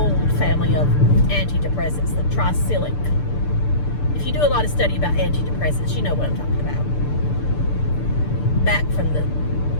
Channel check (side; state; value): right; late; 6.8 ms